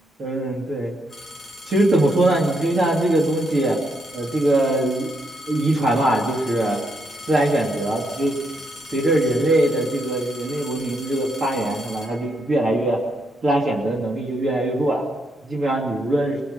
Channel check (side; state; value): both; normal; correlation 0.78